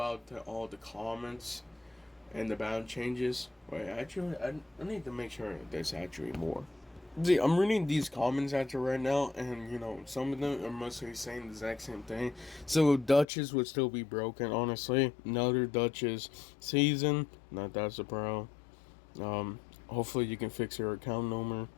all the comments and the bound changes. Wait, actually, I need to make sure there's actually more. See, I'm reading these comments after right now, and some of them are mostly saying the exact same thing. So Duchess would still be broken, honestly. Another Duchess season, not that surprised. Hopefully you can fix your account number,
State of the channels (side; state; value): right; drops out; at 13.2 s